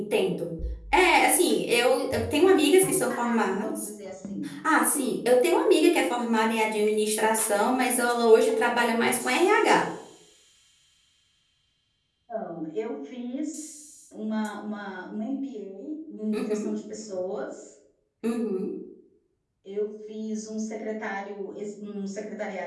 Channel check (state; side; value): identical; both; correlation 1.00